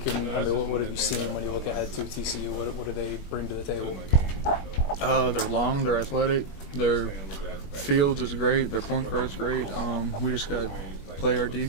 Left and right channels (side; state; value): right; late; 21 ms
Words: – what have you seen when you look ahead to TCU? What do they bring to the table? They're long, they're athletic, their fields is great, their point guard is great. We just got to play our